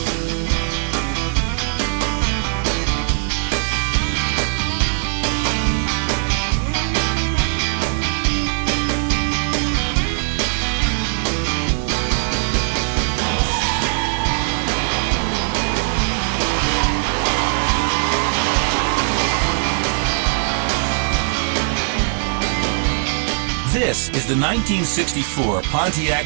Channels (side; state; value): left; silent; 66 dB below the other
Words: This is the 1964 Pontiac